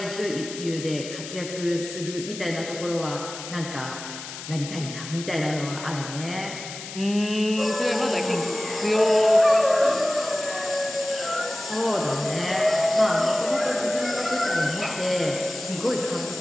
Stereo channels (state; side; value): noise; left; hiss, 11 dB below the sound